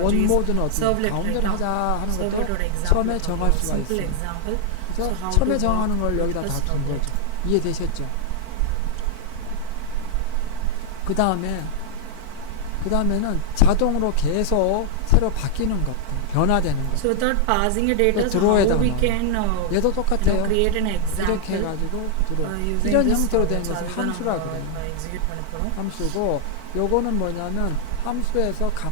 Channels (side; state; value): both; different; correlation 0.00